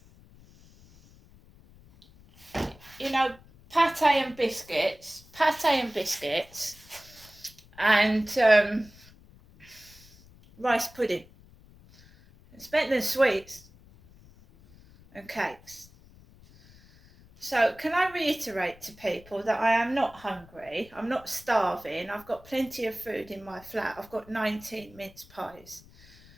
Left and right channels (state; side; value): noise; left; rumble, 24 dB below the sound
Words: you know, pate and biscuits, and rice pudding. I spent the sweets and cakes. So can I reiterate to people that I am not hungry, I'm not starving, I've got plenty of food in my flat, I've got 19 mince pies.